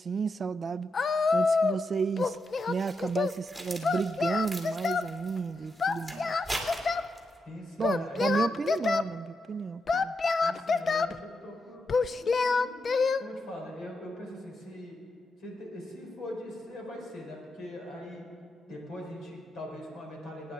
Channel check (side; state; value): both; normal; correlation 0.85